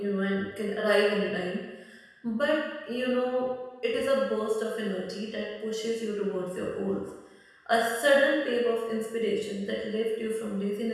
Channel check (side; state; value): both; identical; correlation 1.00